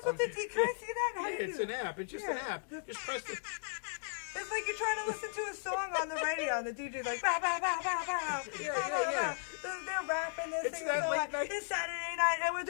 what the Can I see that? How do you it's do an that? app. It's just Yeah. an app. Just press the. It's like you're trying to listen to a song on the radio, and the DJ's like, bow, bow, bow, bow, bow. Yeah, bow, bow, yeah, yeah. bow. They're rapping, they're It's singing that a song late like, night- it's Saturday night, and we're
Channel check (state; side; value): silent; right; digital silence